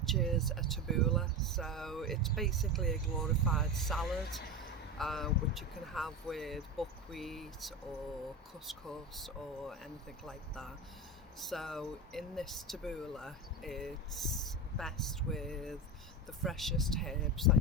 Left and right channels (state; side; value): normal; both; correlation 0.22